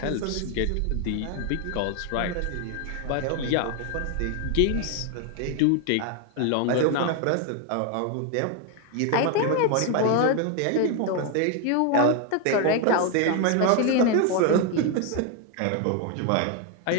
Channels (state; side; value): different; both; correlation 0.01